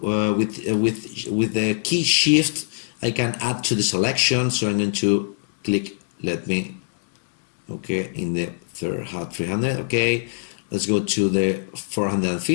with the key shift I can add to the selection, so I'm going to click, okay, in the 300. Okay, let's go to the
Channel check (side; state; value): right; silent; digital silence